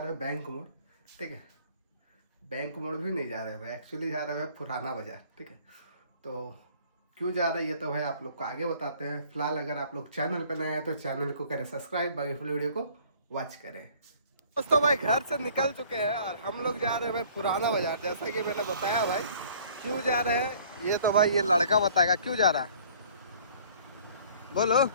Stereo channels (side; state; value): both; inverted; correlation -0.54